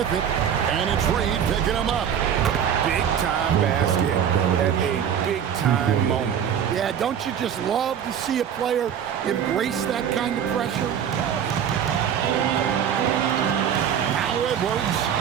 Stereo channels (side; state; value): left; quieter; 8.6 dB